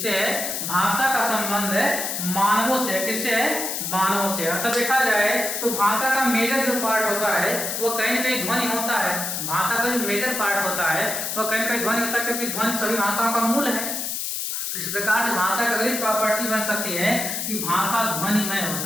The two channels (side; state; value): left; noise; hiss, 3 dB below the sound